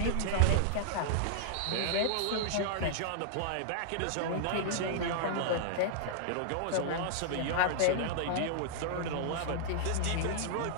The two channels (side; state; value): both; different; correlation -0.01